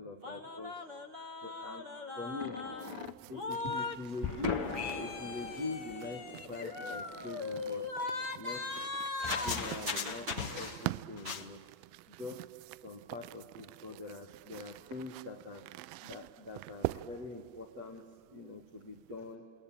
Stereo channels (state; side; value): late; left; 7.9 ms